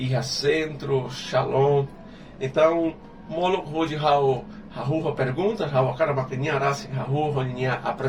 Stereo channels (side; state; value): both; identical; correlation 1.00